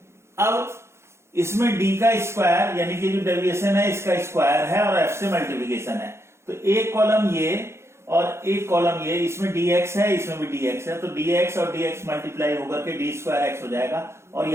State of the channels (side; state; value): left; late; 0.13 ms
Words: अब इसमें d का स्क्वायर यानी कि जो डेविएशन है इसका स्क्वायर है और f से मल्टीप्लिकेशन है, तो एक कॉलम ये और एक कॉलम ये, इसमें dx है इसमें भी dx है, तो dx और dx मल्टीप्लाई होकर के डी स्क्वायर एक्स हो जाएगा और